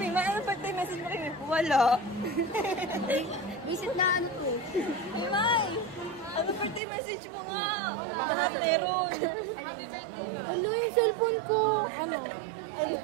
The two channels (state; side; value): drops out; left; at 6.8 s